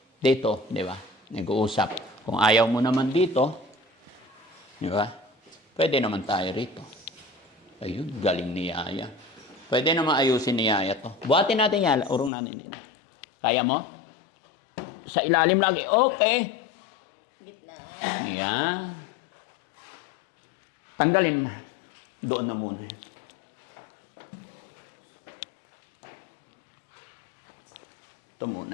dito, di ba? Nag-uusap. Kung ayaw mo naman dito, di ba? Pwede naman tayo rito. Ayun, galing ni Yaya. Pwede naman ayusin ni Yaya to. Buhatin natin yan, urong natin dito. Kaya mo? Sa ilalim lagi. Okay. Gitna. Yan. Tanggalin na. Doon na muna. Ito muna.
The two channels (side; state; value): right; drops out; at 12.3 s